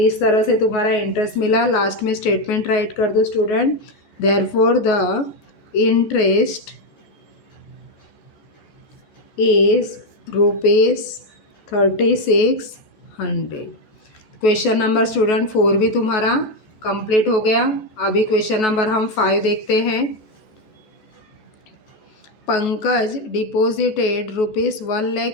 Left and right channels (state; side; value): late; right; 14 ms